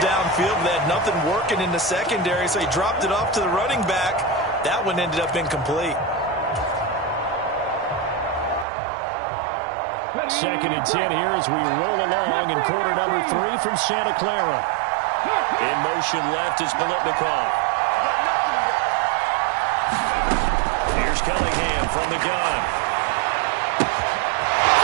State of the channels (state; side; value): drops out; left; at 8.7 s